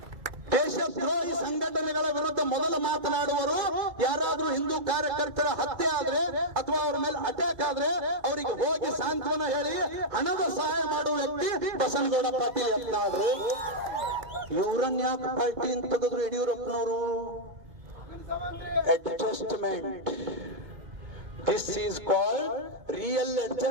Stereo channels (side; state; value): left; late; 2.5 ms